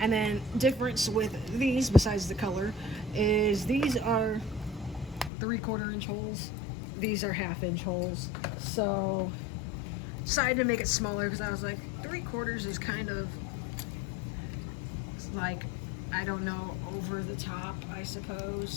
then difference with these, besides the color, is these are 3/4 inch holes. These are 1/2 inch holes. So decided to make it smaller because I was like, 3/4 is kind of like, I don't know, over the top, I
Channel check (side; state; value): right; drops out; at 5.3 s